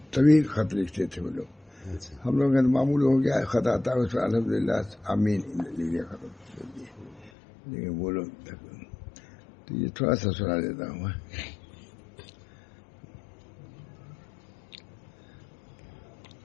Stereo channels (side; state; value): right; drops out; at 7.3 s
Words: طویل خط لکھتے تھے وہ لوگ. ہم لوگ کا معمول ہو گیا خط آتا ہے اس پر الحمد للہ آمین لکھ دیا ختم کر دیے. لیکن وہ لوگ تو یہ تھوڑا سا سنا دیتا ہوں میں.